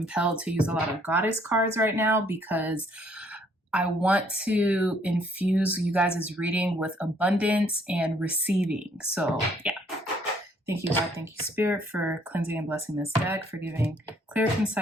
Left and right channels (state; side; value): normal; both; correlation 0.65